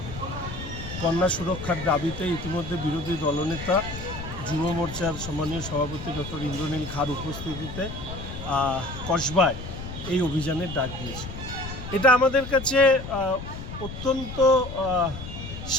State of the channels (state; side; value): noise; left; rumble, 10 dB below the sound